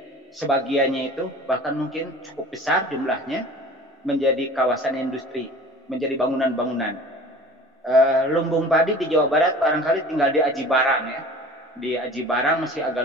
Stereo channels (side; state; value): both; normal; correlation 0.43